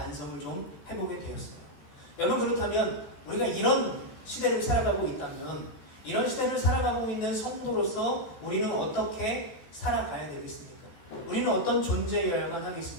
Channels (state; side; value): late; right; 14 ms